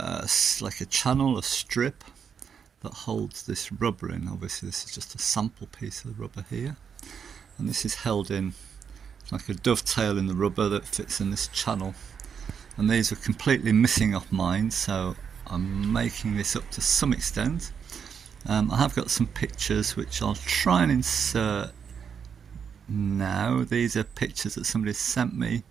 a channel, a strip that holds this rubber in. Obviously this is just a sample piece of the rubber here, and this is held in like a dovetail in the rubber that fits in this channel, and these are completely missing off mine, so I'm making this up to some extent. I have got some pictures which I'll try and insert now. These are pictures that somebody sent me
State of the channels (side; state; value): left; quieter; 7.1 dB